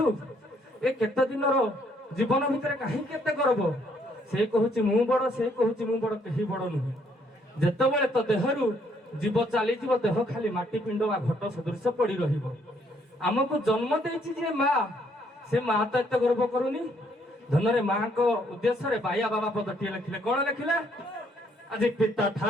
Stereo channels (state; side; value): normal; both; correlation 0.68